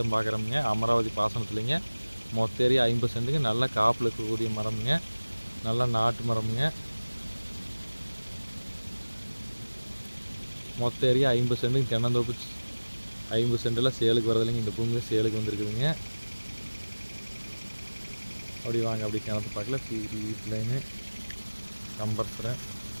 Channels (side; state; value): both; inverted; correlation -1.00